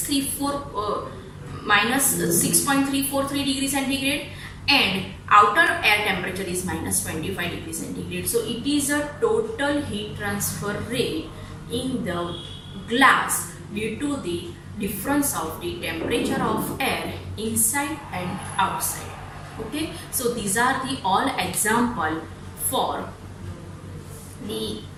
degrees centigrade, and outer air temperature is minus 25 degrees centigrade. So it is a total heat transfer rate in the glass due to the difference of the temperature of air inside and outside. Okay, so these are the all example for the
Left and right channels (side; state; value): both; identical; correlation 1.00